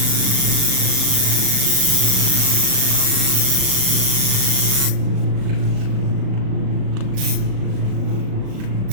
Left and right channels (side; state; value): left; late; 37 ms